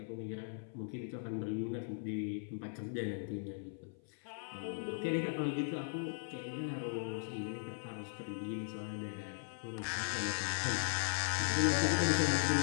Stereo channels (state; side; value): silent; right; 52 dB below the other